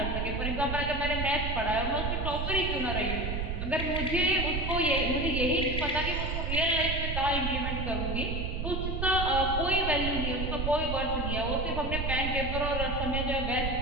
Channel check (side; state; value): right; noise; rumble, 2 dB below the sound